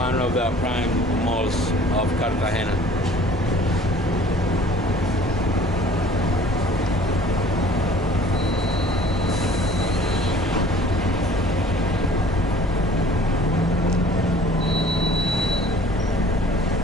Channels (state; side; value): normal; both; correlation 0.51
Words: of the prime malls of Cartagena.